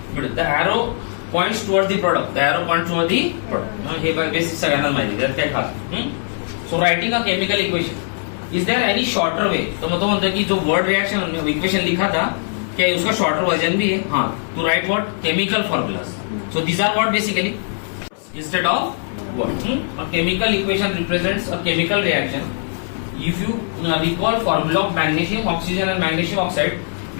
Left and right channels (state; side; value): silent; right; digital silence